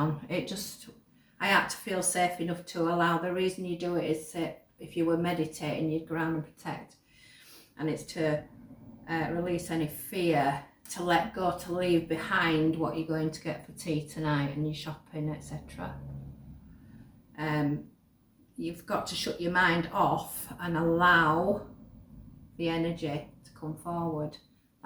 I had to feel safe enough to allow. The reason you do it is if you were meditating, you'd ground and protect, and it's to release any fear, to let go, to leave behind what you're going to get for tea tonight and your shopping, etc. You've got to shut your mind off and allow the energy to come forward.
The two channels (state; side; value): identical; both; correlation 1.00